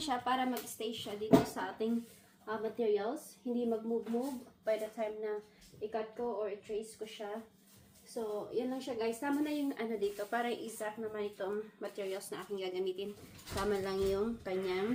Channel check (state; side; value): identical; both; correlation 1.00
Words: para mag-stay siya dito sa ating materials. Hindi mag-move-move by the time na i-cut ko or i-trace ko siya. So, yan lang siya guys. Tama na yung ano dito, para exact naman itong materials na aking gagamitin. Tama lang yung